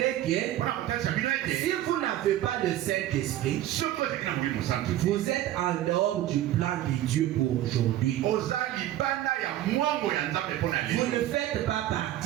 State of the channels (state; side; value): quieter; left; 13.4 dB